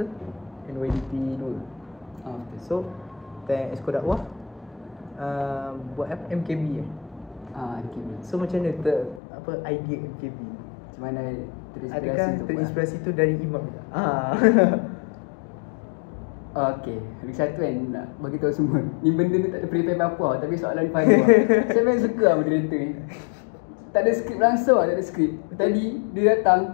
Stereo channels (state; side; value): drops out; right; at 9.2 s